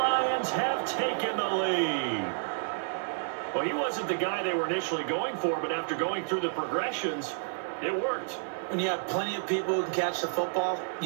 have taken the lead. Well, he wasn't the guy they were initially going for, but after going through the progressions, it worked. When you have plenty of people who can catch the football,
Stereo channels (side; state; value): left; silent; digital silence